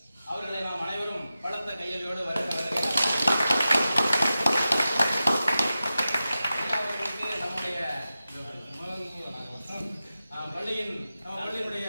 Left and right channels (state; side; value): inverted; both; correlation -0.93